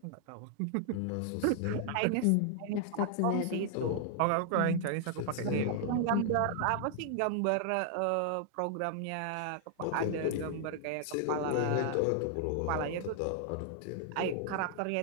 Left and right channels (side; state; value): both; different; correlation 0.00